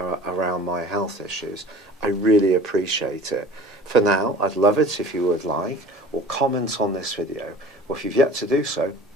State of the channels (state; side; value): normal; both; correlation 0.43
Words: around my health issues. I really appreciate it. For now, I'd love it if you would like or comment on this video, or if you've yet to do so,